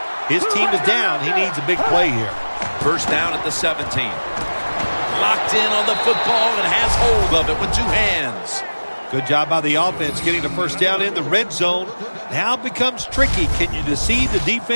His team is down. He needs a big play here. First down at the 17. Locked in on the football and has hold of it with two hands. Good job by the offense getting the first down in the red zone. Now it becomes tricky. Can you deceive the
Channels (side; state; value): both; inverted; correlation -1.00